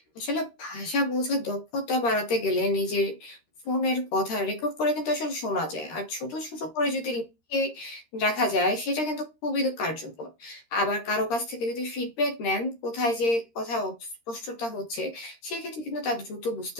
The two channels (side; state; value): right; late; 13 ms